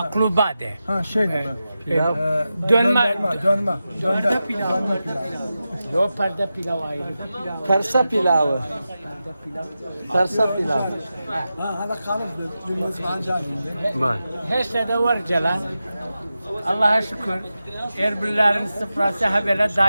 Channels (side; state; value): both; inverted; correlation -0.92